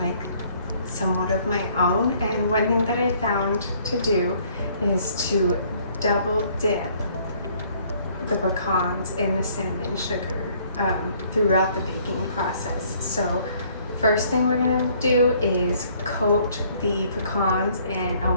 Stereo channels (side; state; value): both; inverted; correlation -0.62